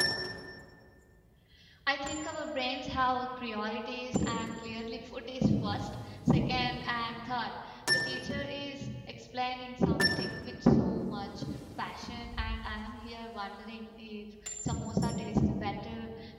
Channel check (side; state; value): both; identical; correlation 1.00